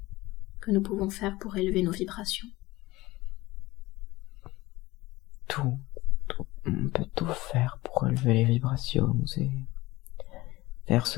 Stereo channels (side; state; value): right; quieter; 19.5 dB